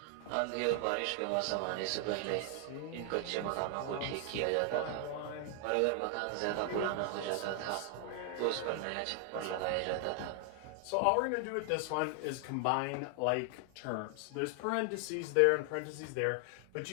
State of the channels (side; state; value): both; different; correlation 0.00